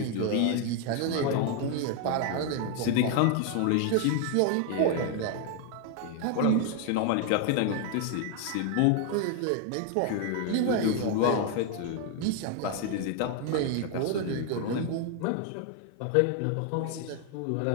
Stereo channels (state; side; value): different; both; correlation 0.00